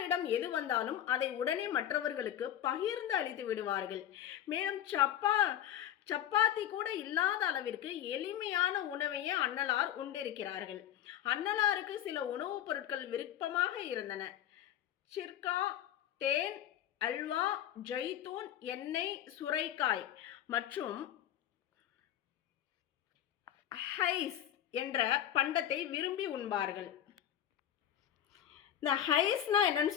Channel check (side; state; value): right; quieter; 11.1 dB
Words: எது வந்தாலும் அதை உடனே மற்றவர்களுக்கு பகிர்ந்து அளித்து விடுவார்கள். மேலும் சப்பாத்தி கூட இல்லாத அளவிற்கு எளிமையான உணவையே அன்னலார் உண்டிருக்கிறார்கள். அன்னலாருக்கு சில உணவுப் பொருட்கள் விருப்பமாக இருந்தன. சிர்கா, தேன், அல்வா, ஜெய்தூன், எண்ணெய், சுரைக்காய் மற்றும் ஹைஸ் என்ற பண்டத்தை விரும்பி உண்பார்கள். இந்த ஹைஸ்னா என்னன்னு